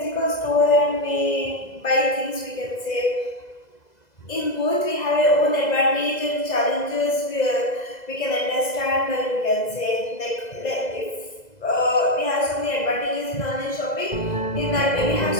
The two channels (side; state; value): right; late; 2.0 ms